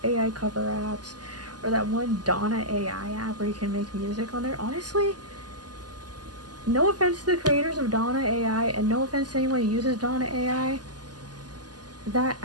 AI cover apps, or that one Donna AI app where you can make music on there. Honestly, no offense to the creators of Donna AI, and no offense to anyone who uses Donna AI, that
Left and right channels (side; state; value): left; late; 0.70 ms